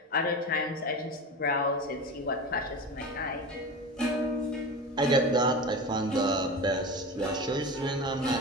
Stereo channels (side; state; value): both; normal; correlation 0.28